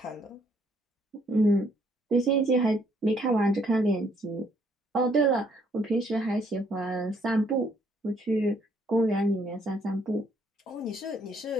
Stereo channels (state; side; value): normal; both; correlation 0.67